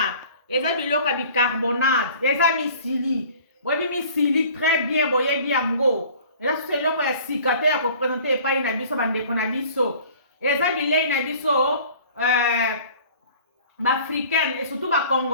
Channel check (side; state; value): both; inverted; correlation -0.48